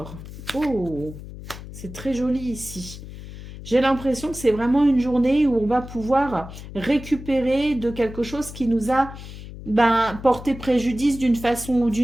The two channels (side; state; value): left; noise; hum, 13 dB below the sound